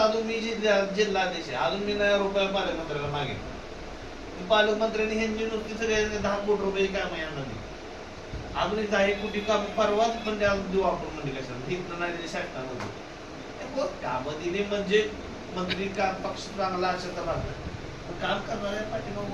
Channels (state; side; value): identical; both; correlation 1.00